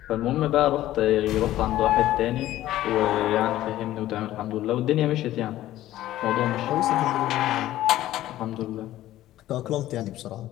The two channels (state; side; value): quieter; right; 14.3 dB